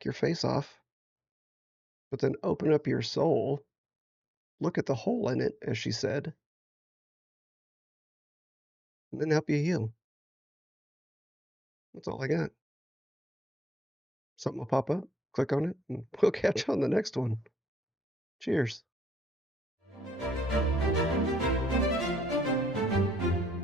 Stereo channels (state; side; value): normal; both; correlation 0.76